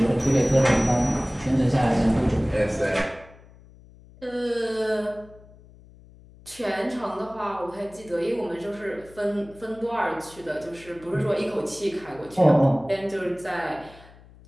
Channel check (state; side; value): noise; left; hum, 23 dB below the sound